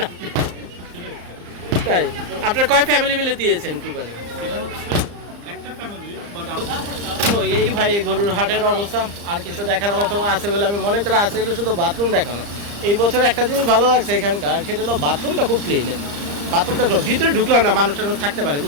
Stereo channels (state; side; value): late; left; 34 ms